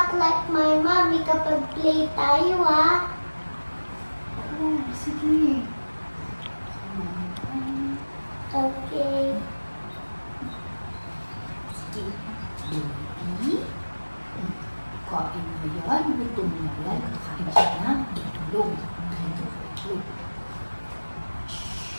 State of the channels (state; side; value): inverted; both; correlation -1.00